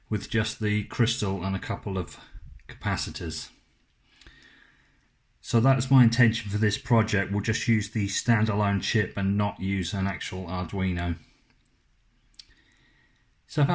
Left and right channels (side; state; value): both; identical; correlation 1.00